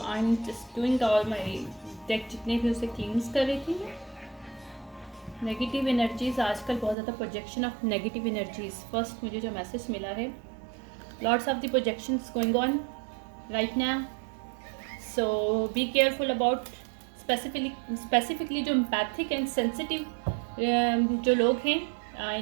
I am just doing all my deck जितने भी उसे क्लींस कर रही थी। नेगेटिव एनर्जीज, आजकल बहुत ज़्यादा projection of negative energies. First मुझे जो मैसेज मिला है, lots of the projections going on right now, so be careful about specifically जो एम्पैथिक एंड सेंसिटिव जो लोग हैं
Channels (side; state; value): left; drops out; at 7.0 s